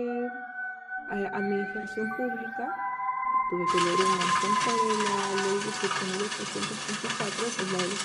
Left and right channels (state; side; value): identical; both; correlation 1.00